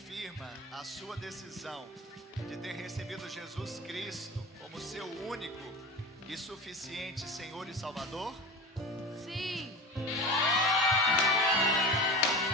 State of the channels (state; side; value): normal; both; correlation 0.30